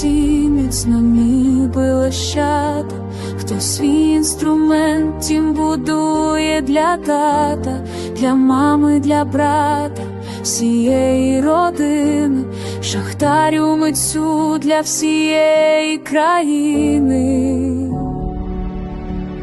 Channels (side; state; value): both; identical; correlation 1.00